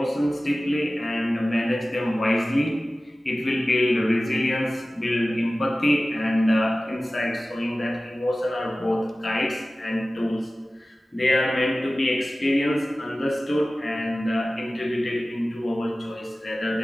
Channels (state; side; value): normal; both; correlation 0.96